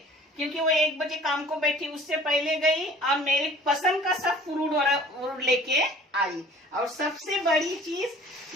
क्योंकि वो 1 बजे काम को बैठी, उससे पहले गई और मेरी पसंद का सब फ्रूट लेके आई। और सबसे बड़ी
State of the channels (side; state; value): both; normal; correlation 0.49